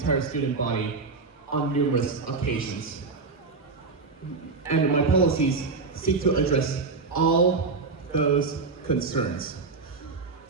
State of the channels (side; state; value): left; quieter; 4.2 dB